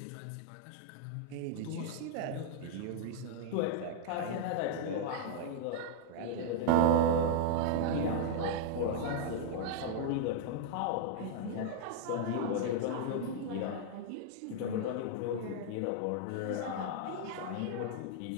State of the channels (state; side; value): different; both; correlation -0.01